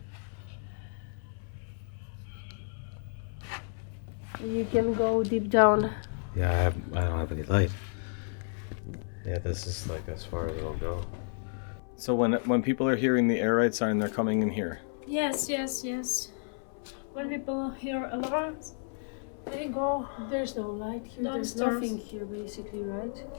You can go deep down. Yeah, I don't have any light. Yeah, this is like as far as it'll go. So when people are hearing the air raid siren, they're coming in here. Yes. When people hear alarms, they go. There's no light here. There's Downstairs. nothing here, basically, right?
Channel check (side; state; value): right; silent; 57 dB below the other